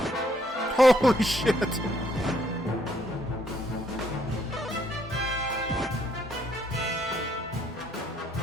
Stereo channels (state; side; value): normal; both; correlation 0.69